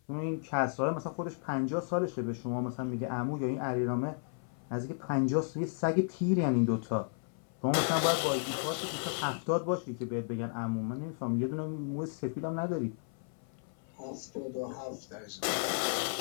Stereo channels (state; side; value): silent; right; 55 dB below the other